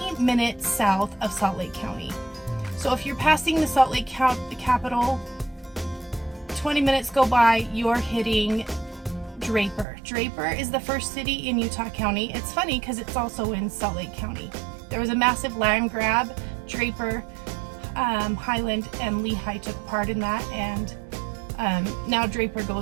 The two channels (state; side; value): drops out; left; at 9.9 s